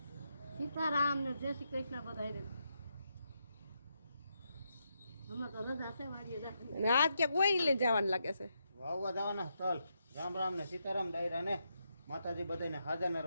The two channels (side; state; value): both; inverted; correlation -0.82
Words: સીતારામ ને જય શ્રી કૃષ્ણ બધાને. હમણાં તો રજા છે વાડીએ જા. અને આજ ક્યાંક કોઈ લઈને જવાનું લાગે છે. વાવવા જવાના તલ. રામ રામ ને સીતારામ ડાયરા ને માતાજી બધાને હાજર